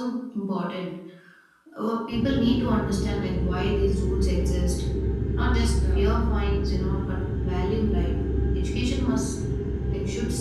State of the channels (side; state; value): both; identical; correlation 1.00